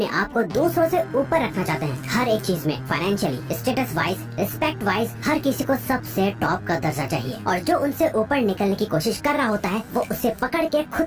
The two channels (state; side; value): identical; both; correlation 1.00